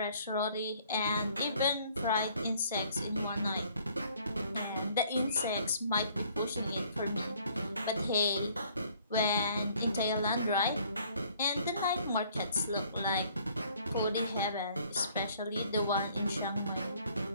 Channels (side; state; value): both; inverted; correlation -0.60